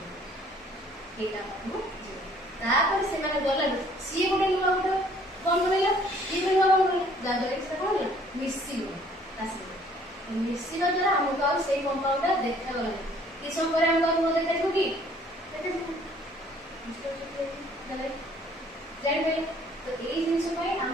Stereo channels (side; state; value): both; normal; correlation 0.58